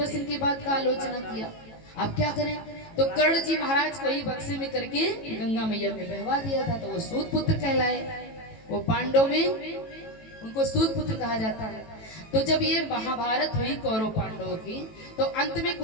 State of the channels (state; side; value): late; right; 18 ms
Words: इनकी बात का आलोचना किया, अब क्या करें? तो कर्ण जी महाराज को ही बक्से में करके गंगा मैया में बहवा दिया था, तो वो सूत पुत्र कहलाए। वो पांडव में उनको सूत पुत्र कहा जाता है। तो जब ये महाभारत हुई कौरव पांडवों की, तो अंत में